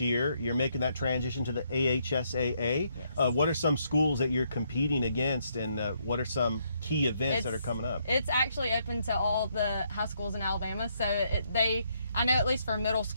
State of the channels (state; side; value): inverted; both; correlation -0.73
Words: You're making that transition to the AHSAA. Yes. What are some schools that you're competing against, and what are some key events that are coming up? It's actually open to all the high schools in Alabama. So I know at least for middle